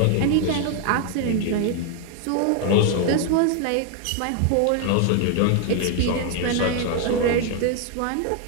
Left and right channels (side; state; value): both; different; correlation 0.00